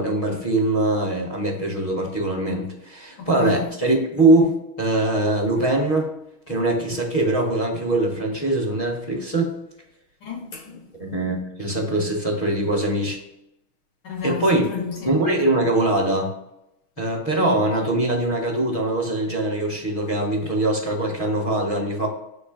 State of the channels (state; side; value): late; right; 6.3 ms